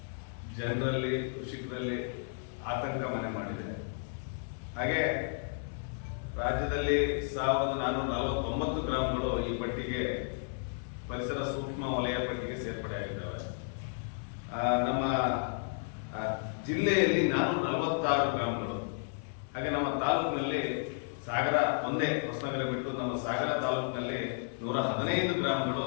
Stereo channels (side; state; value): right; silent; 56 dB below the other